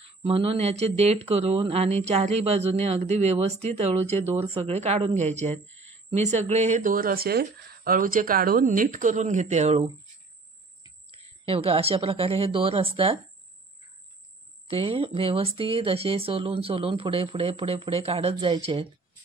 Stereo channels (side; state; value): left; quieter; 3.6 dB